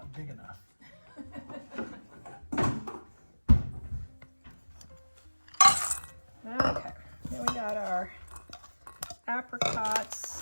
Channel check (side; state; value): both; inverted; correlation -1.00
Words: big enough. Okay, then we got our